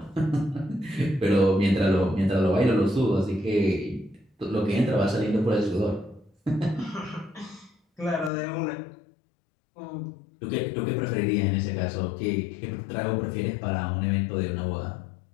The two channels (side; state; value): right; drops out; at 8.3 s